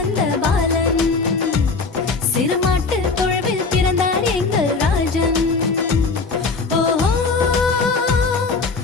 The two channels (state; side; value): quieter; right; 4.3 dB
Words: பாலன், சிறுமாட்டு தொழுவில் பிறந்தார் எங்கள் ராஜன். ஓஹோ,